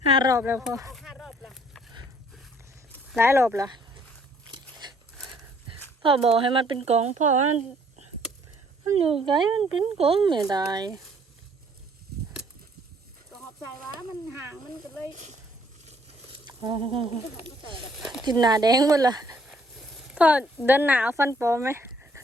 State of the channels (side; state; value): both; normal; correlation 0.63